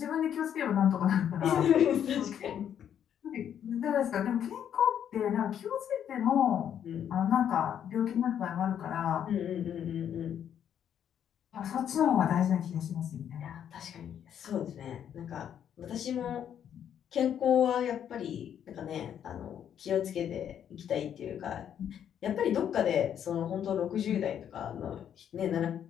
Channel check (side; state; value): right; quieter; 9.3 dB